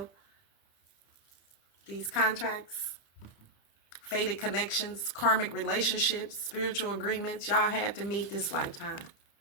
These contracts, fated connections, karmic relationships, spiritual agreements, y'all had to meet this lifetime.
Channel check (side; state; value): right; late; 30 ms